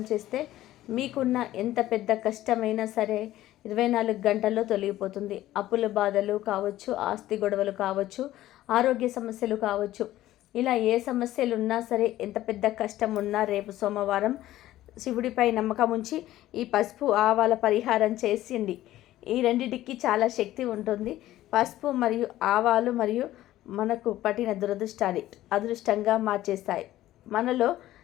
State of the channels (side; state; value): right; quieter; 14.6 dB